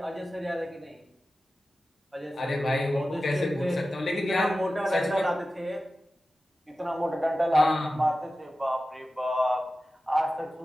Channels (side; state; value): both; normal; correlation 0.94